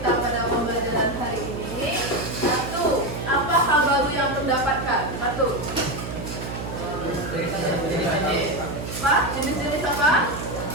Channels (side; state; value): right; noise; hum, 7 dB below the sound